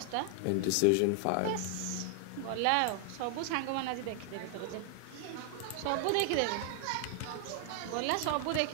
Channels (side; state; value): both; different; correlation 0.00